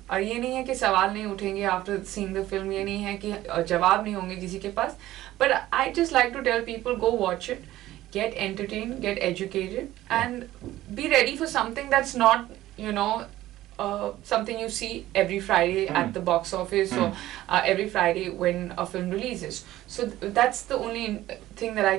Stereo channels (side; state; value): left; quieter; 15.1 dB